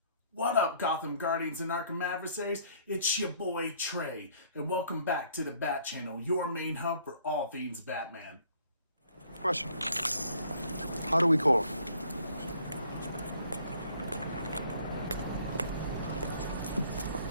What up, Gotham Guardians and Arkham Adversaries? It's your boy Trey, and welcome back to the Bat Channel, your main hub for all things Batman. Question. How do we call him?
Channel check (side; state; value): both; inverted; correlation -0.61